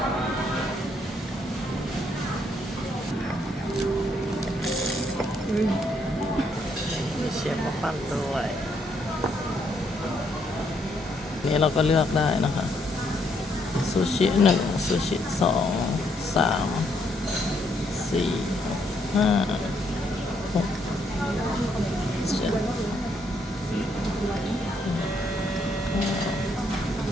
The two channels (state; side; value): normal; both; correlation 0.72